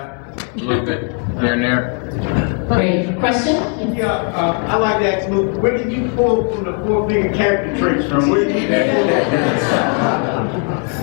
a little bit here and there. Great. Question? Yeah, I like to ask Luke, where did you pull from the 4-finger character traits from? Where did you get that?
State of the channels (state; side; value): quieter; right; 36.1 dB